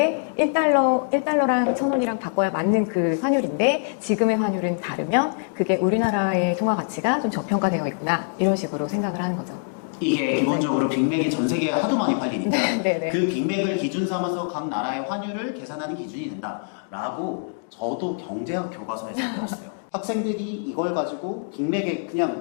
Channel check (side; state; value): right; silent; digital silence